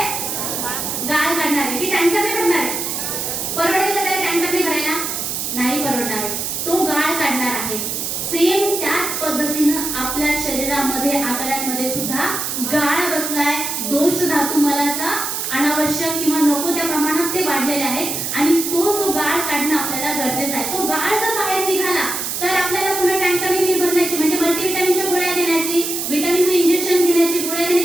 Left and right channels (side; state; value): right; noise; hiss, 3 dB below the sound